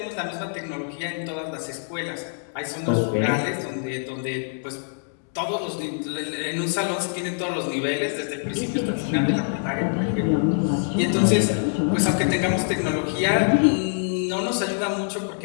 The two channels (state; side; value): silent; right; digital silence